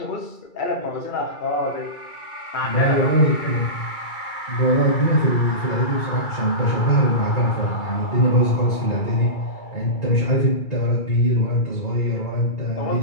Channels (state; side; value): late; right; 2.3 ms